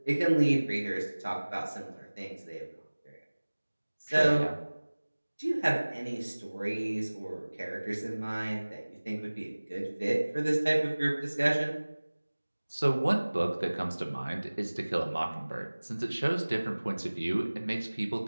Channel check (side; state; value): both; inverted; correlation -1.00